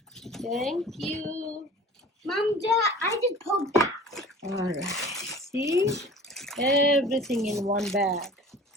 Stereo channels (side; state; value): both; normal; correlation 0.43